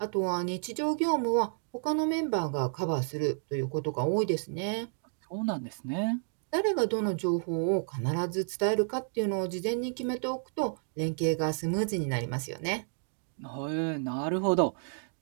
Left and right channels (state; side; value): silent; left; digital silence